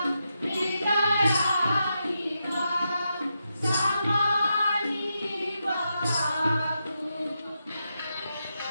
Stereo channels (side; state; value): both; inverted; correlation -0.86